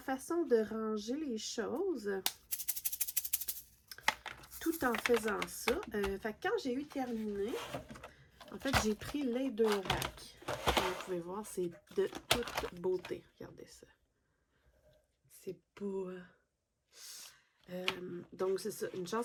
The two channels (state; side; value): identical; both; correlation 1.00